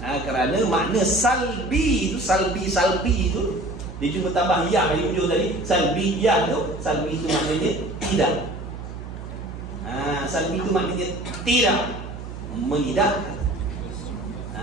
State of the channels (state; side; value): noise; right; hum, 10 dB below the sound